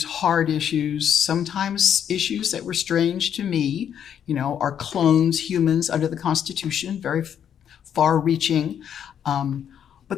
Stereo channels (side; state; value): right; quieter; 9.0 dB